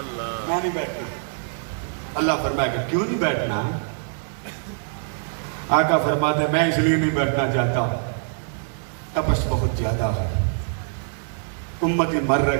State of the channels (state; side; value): silent; left; digital silence